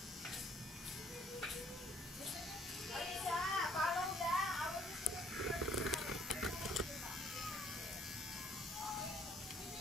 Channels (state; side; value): normal; both; correlation 0.63